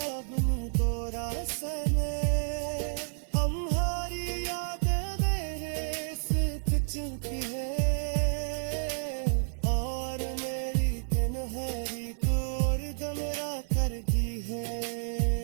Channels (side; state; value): left; silent; 58 dB below the other